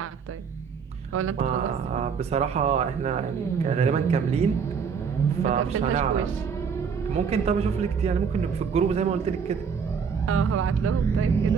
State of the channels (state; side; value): quieter; left; 6.3 dB